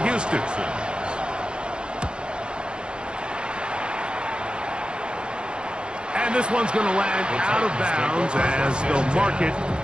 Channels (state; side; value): late; left; 0.051 ms